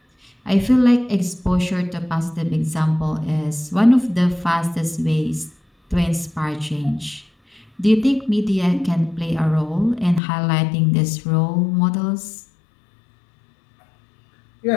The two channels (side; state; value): right; drops out; at 10.2 s